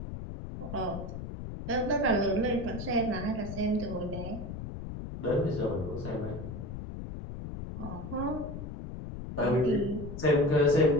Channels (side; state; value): left; noise; rumble, 8 dB below the sound